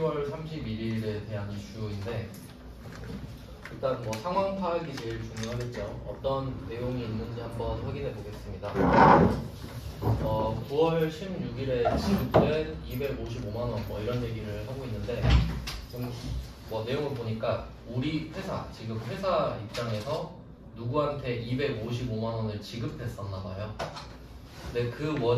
31일에 대한 이슈인데 일단 뭐 상황 파악이 제일 중요하겠죠. 어떤 내용이 있는지 한번 확인해 보겠습니다. 9월 16일에 지급된 255만 원 뭐 이런 얘기를 하고 있는데 좀 뭐 내용을 보니까 우리 회사 지금 회사 입장에서 누구한테 255만 원을 지급했었나 봐요. 근데 그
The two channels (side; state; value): both; identical; correlation 1.00